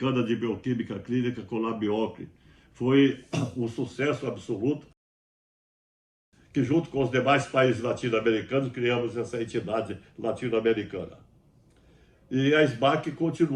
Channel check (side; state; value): both; identical; correlation 1.00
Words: de Bioquímica Clínica, Colabiocle. Foi um sucesso absoluto, que junto com os demais países latino-americanos criamos essa entidade latino-americana. E a SBAC